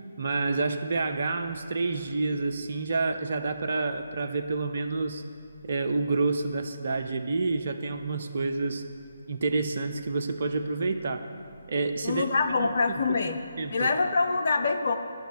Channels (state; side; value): inverted; both; correlation -0.82